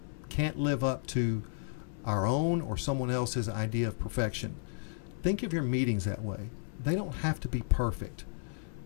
can't live up to our own or someone else's idea of perfection. Think of your meetings that way. They don't have to be perfect,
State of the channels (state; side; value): silent; right; 56 dB below the other